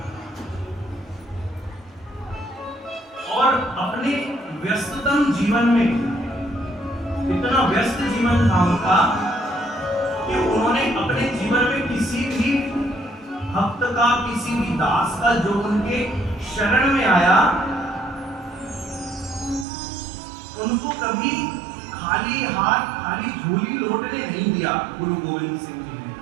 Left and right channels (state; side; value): drops out; left; at 19.7 s